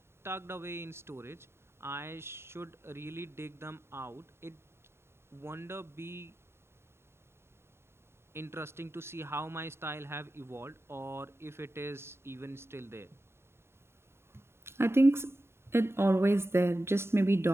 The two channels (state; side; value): late; left; 0.12 ms